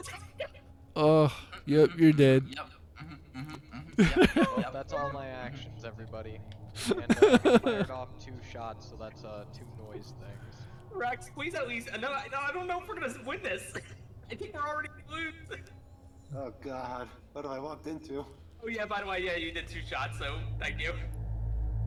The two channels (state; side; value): identical; both; correlation 1.00